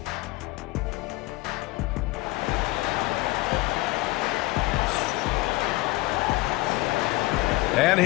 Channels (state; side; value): quieter; right; 20.6 dB